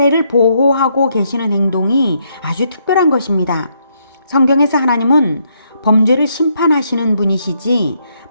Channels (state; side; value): inverted; both; correlation -0.74